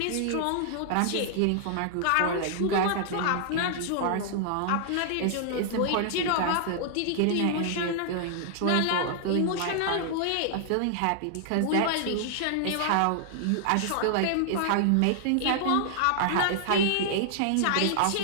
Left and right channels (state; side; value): different; both; correlation -0.01